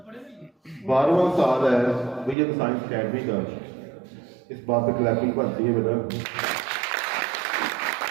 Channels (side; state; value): left; drops out; at 2.4 s